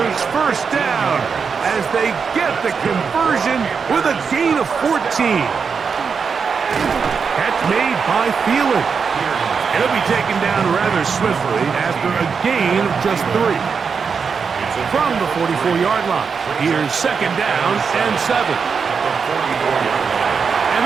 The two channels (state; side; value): quieter; left; 5.8 dB